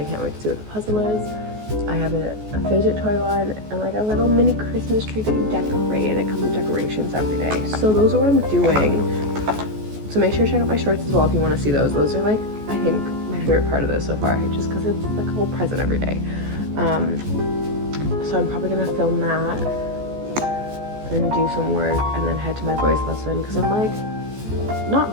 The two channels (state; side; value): late; left; 14 ms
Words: can't wait to see what the puzzle is. I have a fidget toy one and like a little mini Christmas tree that you decorate. It comes with decorations every day. So those are what I'm doing. So make sure to check out my shorts as well if you want to see those. Those are like, I think, my favorite part of this so far, just because it's like a whole present every day. So I'm probably gonna film that and do some work and then head to my voice lesson because I'm like